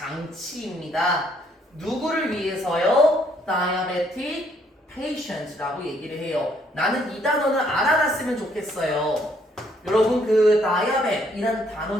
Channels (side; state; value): both; normal; correlation 0.68